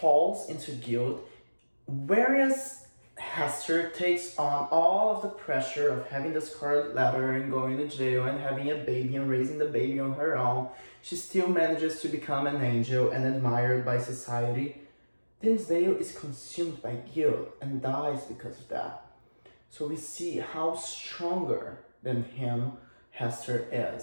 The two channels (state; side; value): inverted; both; correlation -1.00